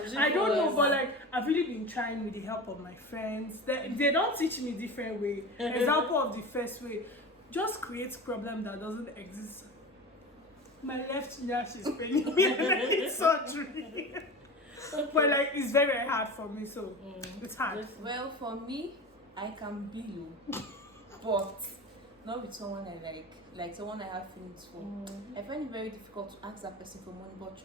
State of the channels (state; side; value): normal; both; correlation 0.30